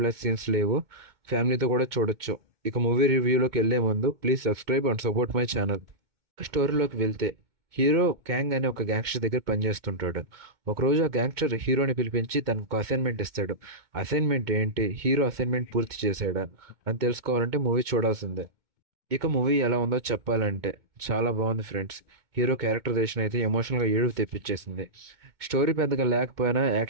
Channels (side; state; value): left; late; 2.2 ms